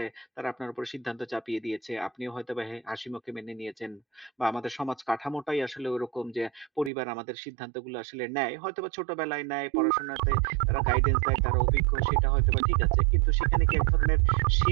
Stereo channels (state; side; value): drops out; left; at 6.9 s